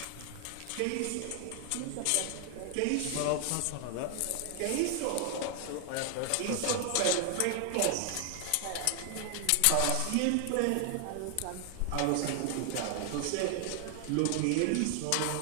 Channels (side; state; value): both; different; correlation 0.00